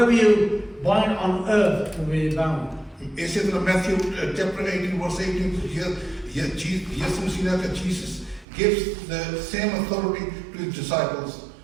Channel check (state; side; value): drops out; left; at 8.5 s